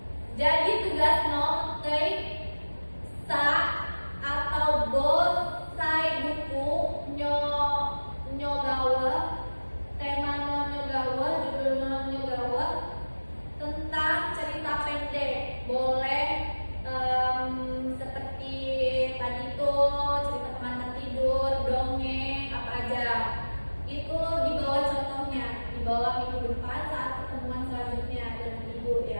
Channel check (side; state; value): both; inverted; correlation -1.00